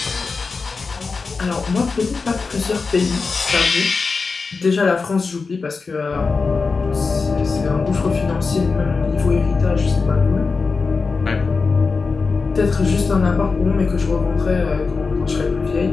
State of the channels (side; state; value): right; quieter; 4.5 dB